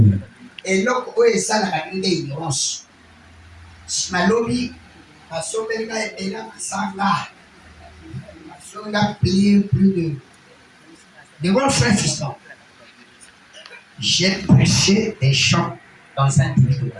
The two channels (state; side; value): identical; both; correlation 1.00